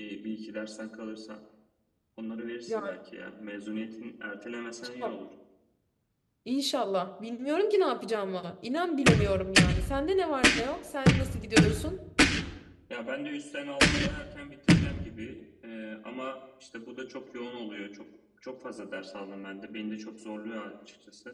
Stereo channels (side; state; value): both; identical; correlation 1.00